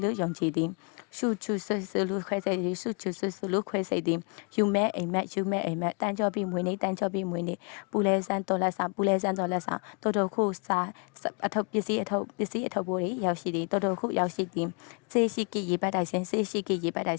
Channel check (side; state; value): right; quieter; 36.2 dB